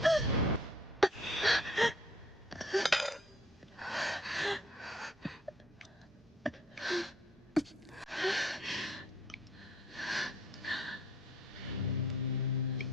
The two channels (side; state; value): both; normal; correlation 0.60